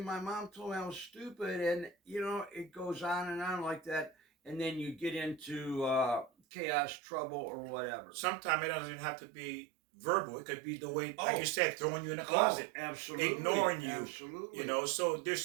mom told me I was stupid. And, it goes on and on like that. And then you get into chaos, trouble, or whatever. Sometimes it doesn't even have to be verbal. It could be the way, like you said, throwing you in a closet. Absolutely. Ignoring you. Absolutely. So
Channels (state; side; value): drops out; left; at 6.3 s